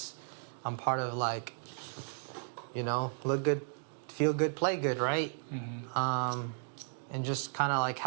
I'm part of like, you know, look good, feel good, play good, right? And just kind of like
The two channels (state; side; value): silent; left; digital silence